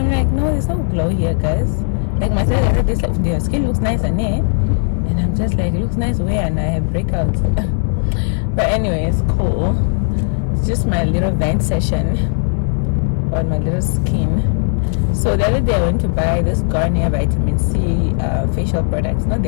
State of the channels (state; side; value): silent; right; digital silence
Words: like, no, there's no glow here, guys. Like my side, I heard this, like, their skin looks nice and and I'm just like, it looks nice where, and I have breakouts. But anyways, cool. It's just my little vent session on my little skin. So the other day I went to buy this Garnier vitamin C facial products. Not